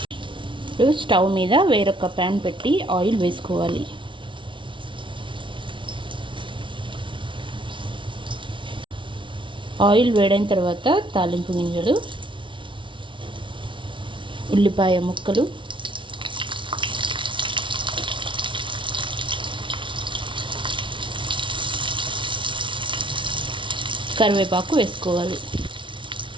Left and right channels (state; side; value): late; left; 0.24 ms